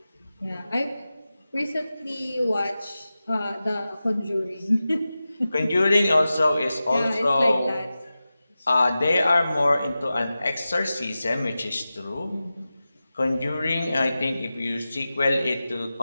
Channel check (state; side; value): inverted; both; correlation -0.94